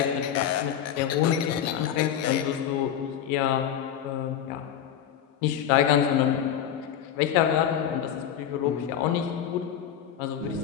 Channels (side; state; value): right; quieter; 9.6 dB